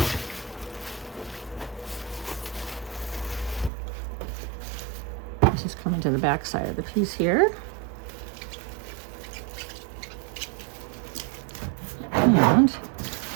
This is coming to the back side of the piece here. And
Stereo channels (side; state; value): left; drops out; at 3.7 s